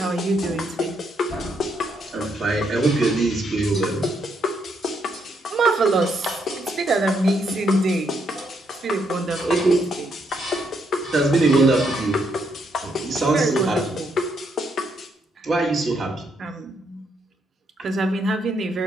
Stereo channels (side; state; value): both; normal; correlation 0.76